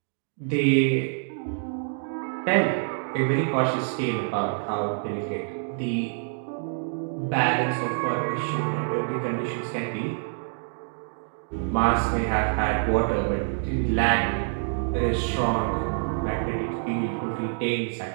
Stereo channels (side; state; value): left; silent; 60 dB below the other